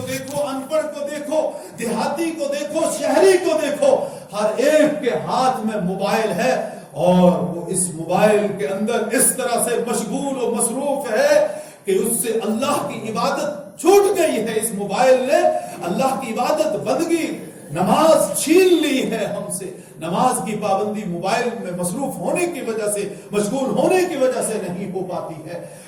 دیکھو، ان پڑھ کو دیکھو، دیہاتی کو دیکھو، شہری کو دیکھو، ہر ایک کے ہاتھ میں موبائل ہے اور وہ اس موبائل کے اندر اس طرح سے مشغول و مصروف ہے کہ اس سے اللہ کی عبادت چھوٹ گئی ہے۔ اس موبائل نے اللہ کی عبادت بندگی، نماز چھین لی ہے ہم سے۔ نماز کی پابندی موبائل میں مصروف ہونے کی وجہ سے، مشغول ہونے کی وجہ سے نہیں ہو پاتی ہے۔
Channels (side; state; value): both; identical; correlation 1.00